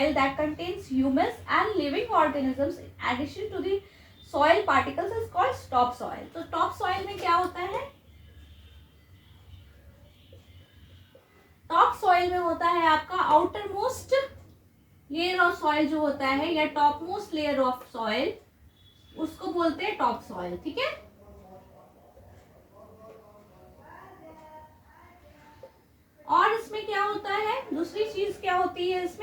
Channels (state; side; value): identical; both; correlation 1.00